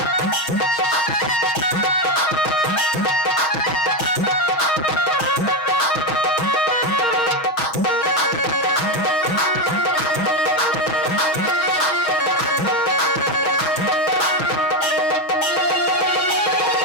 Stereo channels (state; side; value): late; right; 6.5 ms